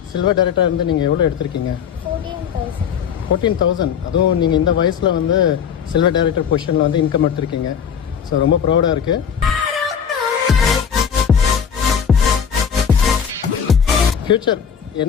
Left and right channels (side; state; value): right; quieter; 7.5 dB